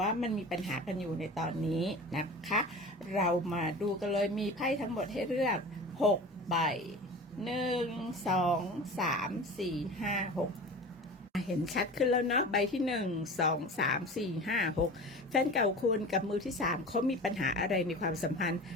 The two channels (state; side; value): normal; both; correlation 0.35